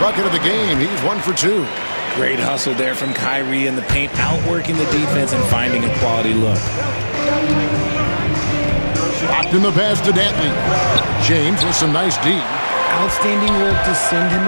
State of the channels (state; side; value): inverted; both; correlation -1.00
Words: bucket of the game. He's 1 for 2. Great hustle there from Kyrie in the paint, outworking the defense and finding a quality look. Locked in the pass to Dantley. James with some nice D. Outstanding work to send him